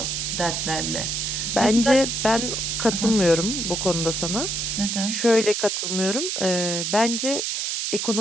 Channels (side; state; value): right; noise; hiss, 1 dB below the sound